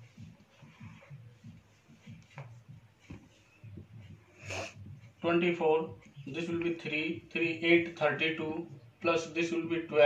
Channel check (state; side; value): identical; both; correlation 1.00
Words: This will be 3, 3, 8, 32 plus this will be